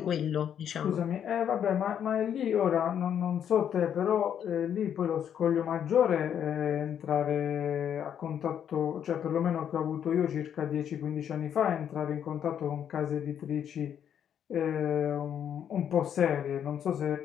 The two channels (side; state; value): right; quieter; 9.0 dB